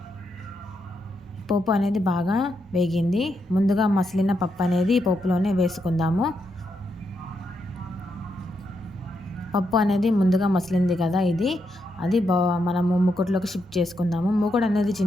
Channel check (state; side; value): normal; both; correlation 0.82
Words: పోపు అనేది బాగా వేగింది. ముందుగా మసిలిన పప్పు అనేది ఈ పోపులోనే వేసుకుందాము. పప్పు అనేది ముందుగా మసిలింది కదా, అది మనము మూకుడులోకి షిఫ్ట్ చేసుకుందాము. మూకుడు అనేది